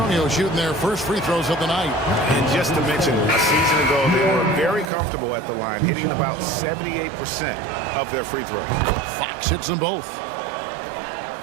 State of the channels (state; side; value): drops out; left; at 4.9 s